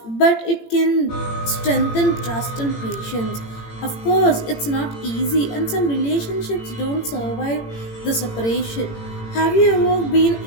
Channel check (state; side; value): late; right; 18 ms